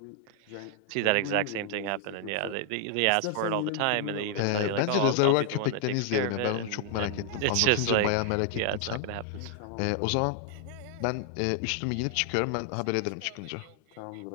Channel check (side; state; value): both; different; correlation 0.00